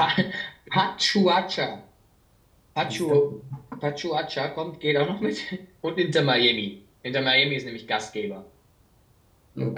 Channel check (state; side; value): identical; both; correlation 1.00